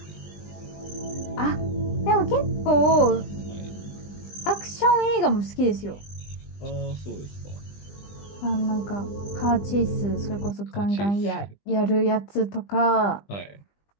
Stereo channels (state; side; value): late; right; 20 ms